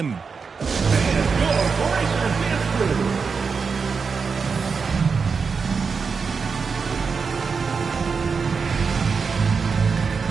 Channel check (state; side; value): quieter; left; 5.3 dB